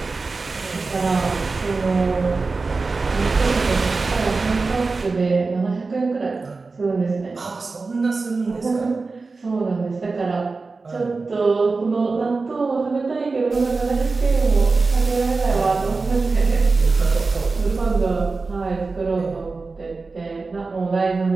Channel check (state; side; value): quieter; left; 4.0 dB